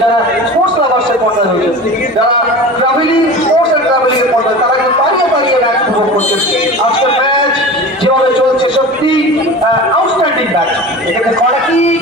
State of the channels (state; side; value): normal; both; correlation 0.34